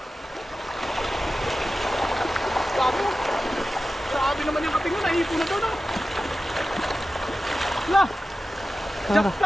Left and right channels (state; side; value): normal; both; correlation 0.94